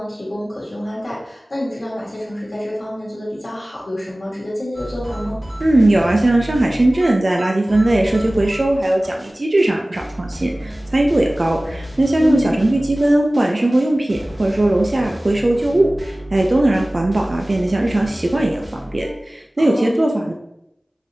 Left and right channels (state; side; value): normal; both; correlation 0.98